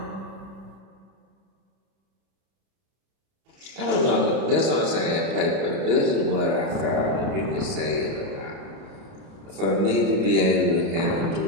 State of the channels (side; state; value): left; late; 31 ms